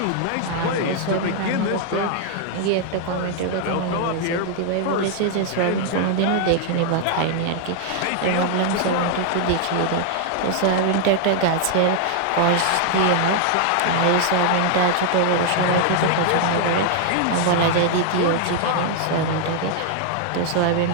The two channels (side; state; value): both; different; correlation 0.00